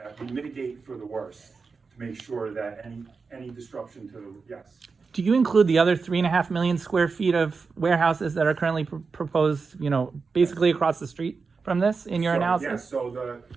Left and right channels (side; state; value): left; quieter; 4.8 dB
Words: mitigate for the worst, to make sure that any disruption to the, yes. Do you include the other 3.5 million square feet of warehouses that are currently proposed, basically across the street from this in your analysis? Yes, so